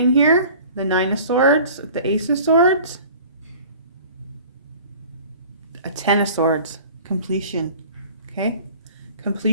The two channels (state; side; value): inverted; both; correlation -0.45